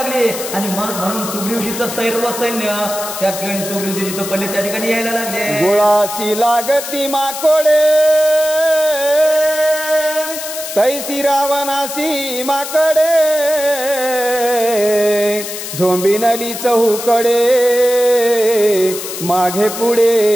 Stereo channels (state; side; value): noise; left; hiss, 8 dB below the sound